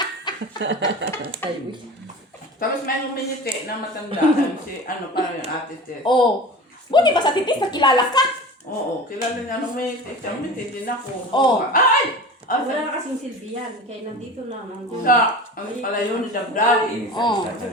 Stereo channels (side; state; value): both; normal; correlation 0.34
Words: Tapos may uminiti na matanda. Si ano parang yung ate Ted. Oh. Buti ba sa titis, nakilala ka? Oo, kilala niya nung uminiti. Siya uminiti din ako. Oh. Ay! Ah, wala na kasing silbihan. Kaya nandito na. Nandito. Sa, ang pala yun ni Dabdab. Oh. Isa